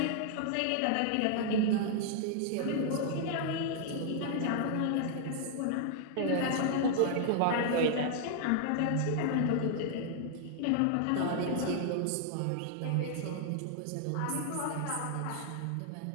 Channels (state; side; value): different; both; correlation -0.01